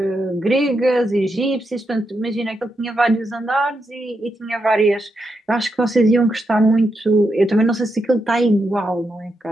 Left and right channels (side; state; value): both; normal; correlation 0.84